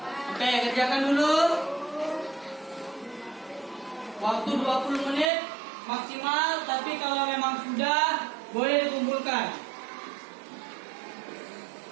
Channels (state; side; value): drops out; left; at 5.3 s